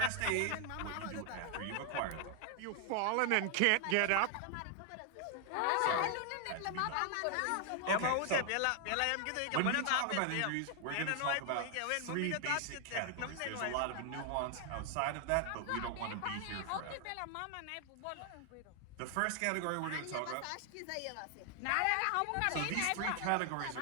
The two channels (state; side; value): different; both; correlation 0.00